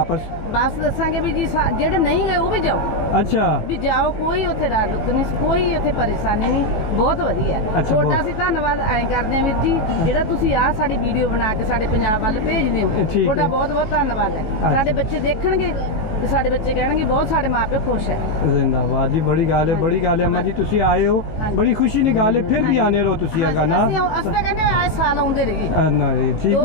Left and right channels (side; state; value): right; late; 19 ms